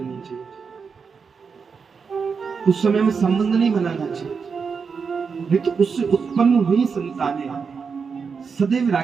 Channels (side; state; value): left; quieter; 5.6 dB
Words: चाहिए, उस समय में संबंध नहीं बनाना चाहिए, नहीं तो उससे उत्पन्न हुई संतानें सदैव